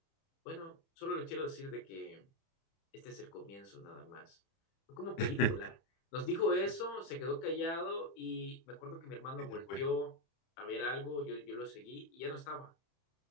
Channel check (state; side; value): late; right; 30 ms